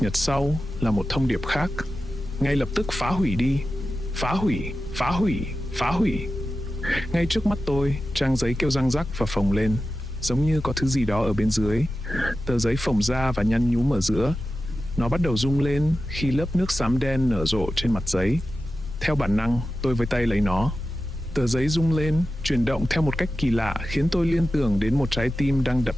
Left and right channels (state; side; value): normal; both; correlation 0.93